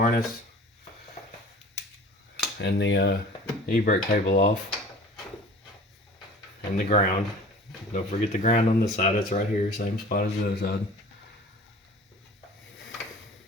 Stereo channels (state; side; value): normal; both; correlation 0.44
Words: and the e-brake cable off. And the ground. Don't forget the ground on this side. It's right here, same spot as the other side.